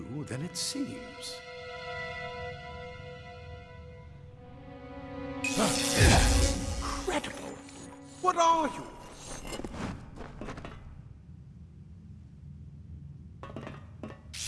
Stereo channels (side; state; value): both; identical; correlation 1.00